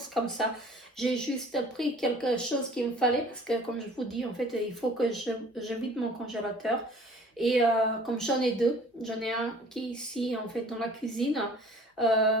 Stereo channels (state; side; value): normal; both; correlation 0.50